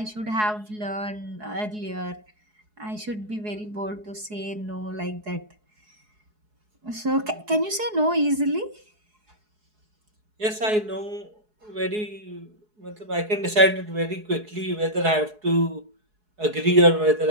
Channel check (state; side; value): late; left; 4.7 ms